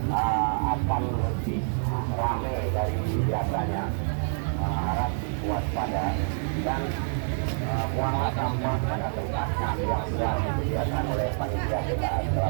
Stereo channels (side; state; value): left; silent; digital silence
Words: akan lebih ramai dari biasanya. Harap waspada dan buanglah sampah pada tempatnya yang sudah disediakan oleh panitia PKA